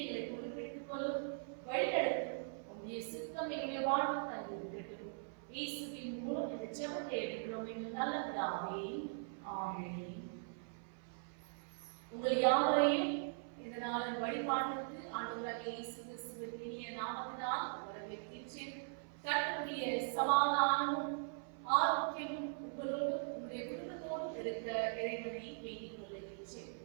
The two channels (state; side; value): silent; left; 51 dB below the other